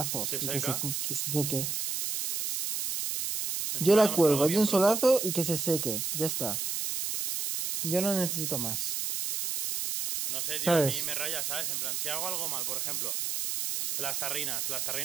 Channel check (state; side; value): noise; right; hiss, 2 dB below the sound